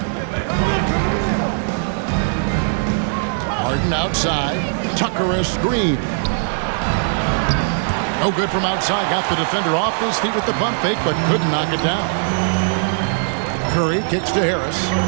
Harden outside. Tucker a screen. No good from outside. Got the defender off his feet with the pump fake, but couldn't knock it down. Curry kicks to Harris.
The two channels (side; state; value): left; silent; 61 dB below the other